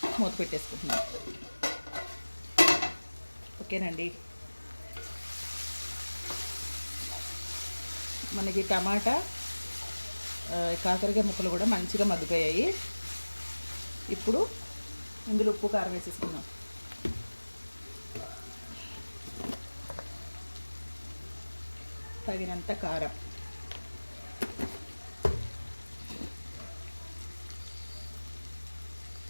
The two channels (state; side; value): inverted; both; correlation -1.00